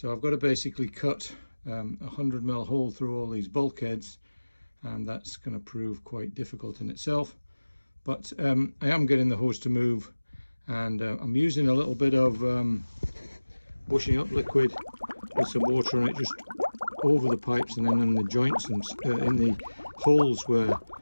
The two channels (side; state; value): both; inverted; correlation -1.00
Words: I've got to basically cut a 100mm hole through all these bulkheads, and that's going to prove quite difficult in itself. But I am getting the hose to move, and I'm using a little bit of washing up liquid with some water on it, just over the pipes and then in the joints and in the holes where